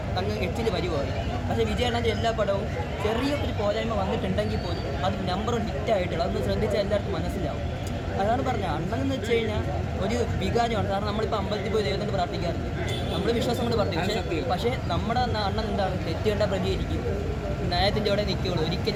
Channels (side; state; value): both; identical; correlation 1.00